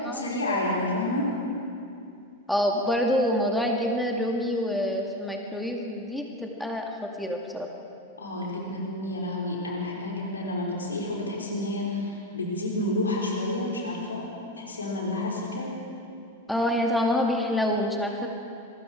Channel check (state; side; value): normal; both; correlation 0.23